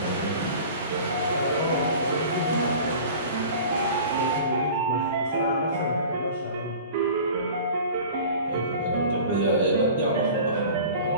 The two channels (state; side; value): inverted; both; correlation -0.41